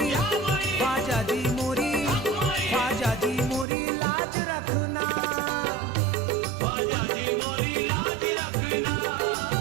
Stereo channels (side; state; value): left; drops out; at 3.7 s